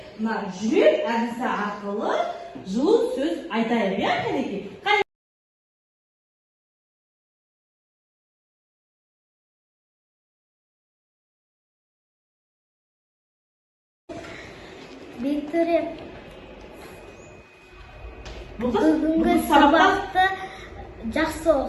мына жүрек әдісі арқылы жылы сөз айтайық, иә, кәнекей? Виктория, бүгінгі сабақты жақсы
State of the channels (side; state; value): both; identical; correlation 1.00